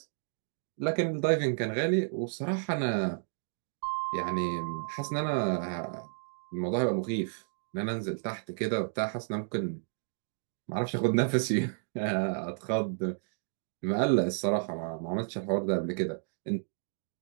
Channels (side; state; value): left; silent; digital silence